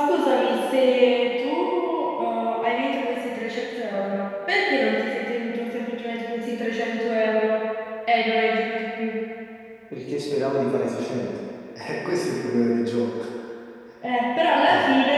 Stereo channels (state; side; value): identical; both; correlation 1.00